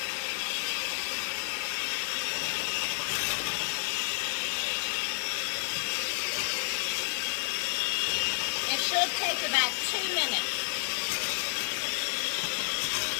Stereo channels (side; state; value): right; silent; digital silence